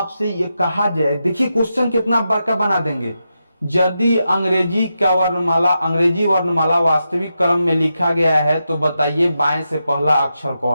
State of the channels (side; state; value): both; inverted; correlation -0.87